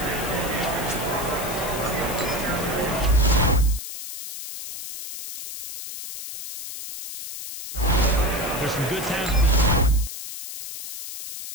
There's some good times.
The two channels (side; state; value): left; noise; hiss, 9 dB below the sound